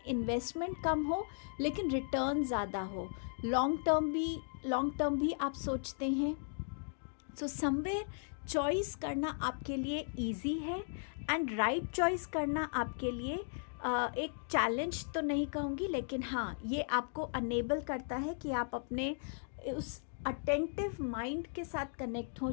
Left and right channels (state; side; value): silent; right; digital silence